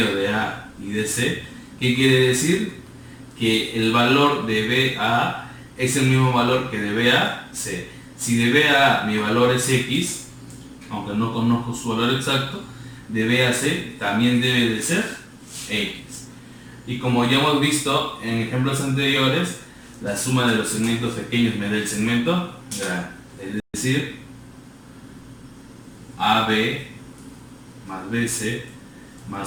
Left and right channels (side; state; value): both; identical; correlation 1.00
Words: de A y de C, ¿qué quiere decir? Que el valor de BA es el mismo valor que de BAC. Si de BA mi valor es X, aunque no conozco su valor exacto, de BAC también debe de ser X. Y como ya hemos visto en ejemplos anteriores, la suma de los segmentos pequeños me da el segmento grande. Es decir, AB más BC